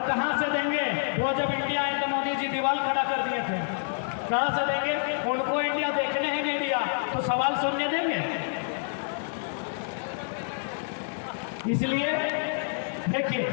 कहां से देंगे? वो जब इंडिया आए तो मोदी जी दीवार खड़ा कर दिए थे, कहां से देंगे? उनको इंडिया देखने ही नहीं दिया तो सवाल सुनने देंगे? इसलिए देखिए,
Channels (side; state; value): right; silent; 59 dB below the other